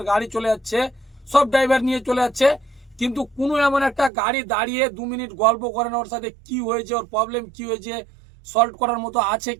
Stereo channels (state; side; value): drops out; left; at 4.1 s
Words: গাড়ি চলে যাচ্ছে, সব ড্রাইভার নিয়ে চলে যাচ্ছে, কিন্তু কোনো এমন একটা গাড়ি দাঁড়িয়ে 2 মিনিট গল্প করে না, ওর সাথে কি হয়েছে, ওর প্রবলেম কি হয়েছে, সলভ করার মতো আছে